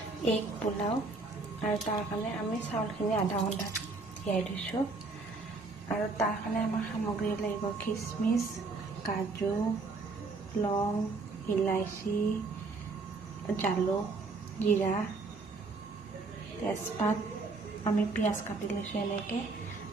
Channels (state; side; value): quieter; left; 3.8 dB